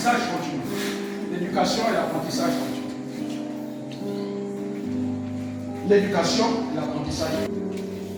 continu. L'éducation et l'apprentissage continu. L'éducation et l'apprentissage continu.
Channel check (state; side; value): identical; both; correlation 1.00